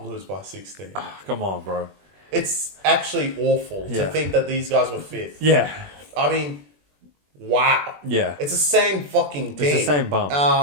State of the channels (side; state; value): left; late; 21 ms